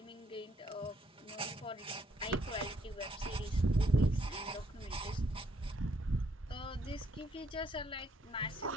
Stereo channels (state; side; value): normal; both; correlation 0.70